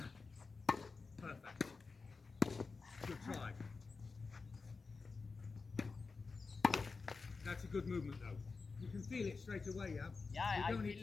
Perfect. Good try. That's a good movement though. You can feel it straight away, yeah? Yeah, You I don't need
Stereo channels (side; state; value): right; quieter; 4.4 dB